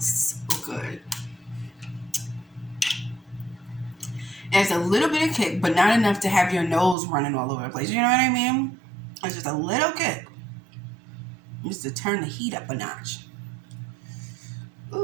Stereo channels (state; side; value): drops out; left; at 7.0 s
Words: good. There's a little bit of kick, but not enough to have your nose running all over the place. You know what I mean? It's just a little kick. Just to turn the heat up a notch.